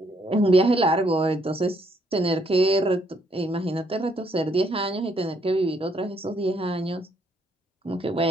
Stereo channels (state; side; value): normal; both; correlation 0.71